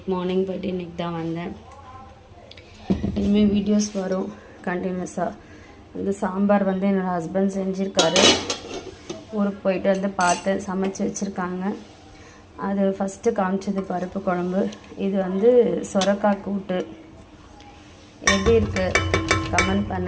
மார்னிங் போயிட்டு இன்றைக்கி தான் வந்தேன். இனிமேல் வீடியோஸ் வரும் கண்டினியூஸாக. சாம்பார் என்னோடய ஹஸ்பண்ட் செஞ்சுருக்காரு. ஊருக்கு போயிட்டு பார்த்தேன், சமைச்சு வச்சுருக்காங்க. அது ஃபஸ்ட்டு காமிச்சது பருப்பு குழம்பு. இது சொரக்காய் கூட்டு. எப்படி இருக்குது கமெண்ட்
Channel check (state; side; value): identical; both; correlation 1.00